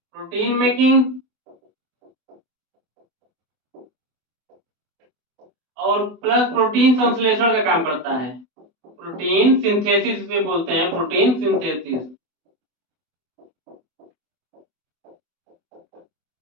मेकिंग और प्लस प्रोटीन संश्लेषण का काम करता है। प्रोटीन सिंथेसिस से बोलते हैं, प्रोटीन सिंथेसिस।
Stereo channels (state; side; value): late; left; 24 ms